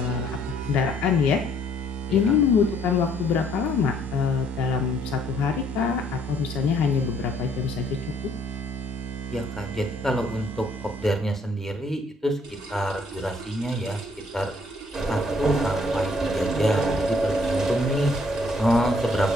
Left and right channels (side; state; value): both; normal; correlation 0.64